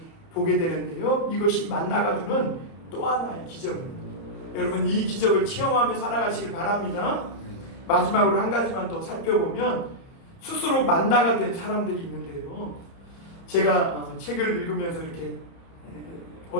보게 되는데요. 이것이 만나가 주는 또 하나의 기적입니다. 여러분, 이 기적을 체험하며 살아가시길 바랍니다. 마지막으로 한 가지만 더 살펴보면 스스로 만나가 된 사람들이 있는데요. 제가 책을 읽으면서 이렇게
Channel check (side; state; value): right; late; 30 ms